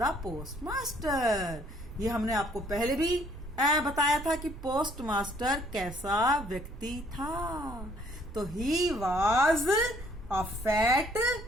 post master. ये हमने आपको पहले भी बताया था कि पोस्ट मास्टर कैसा व्यक्ति था। तो he was a fat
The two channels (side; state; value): right; noise; rumble, 12 dB below the sound